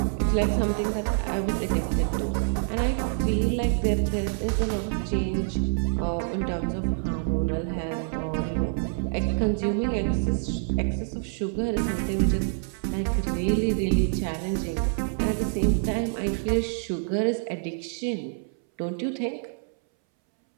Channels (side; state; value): left; silent; 60 dB below the other